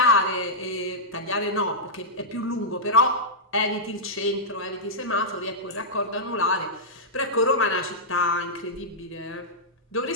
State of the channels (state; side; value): normal; both; correlation -0.10